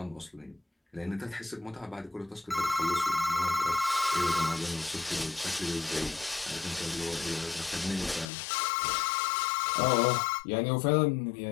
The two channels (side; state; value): right; drops out; at 8.2 s